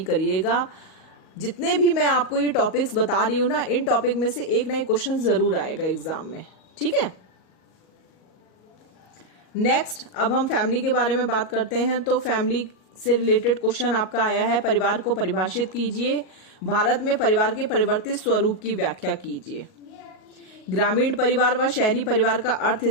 करिएगा। जितने भी मैं आपको ये टॉपिक्स बता रही हूं ना, इन टॉपिक में से एक ना एक क्वेश्चन जरूर आएगा एग्जाम में, ठीक है। नेक्स्ट अब हम फैमिली के बारे में बात करते हैं। तो फैमिली से रिलेटेड क्वेश्चन आपका आया है, परिवार को परिभाषित कीजिए, भारत में परिवार के परिवर्तित स्वरूप की व्याख्या कीजिए। ग्रामीण परिवार व शहरी परिवार का अर्थ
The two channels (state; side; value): late; right; 38 ms